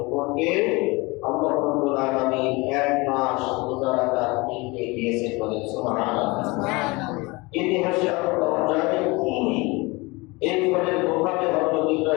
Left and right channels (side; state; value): right; quieter; 24.6 dB